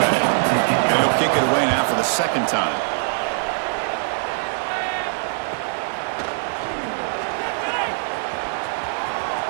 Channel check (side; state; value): left; silent; digital silence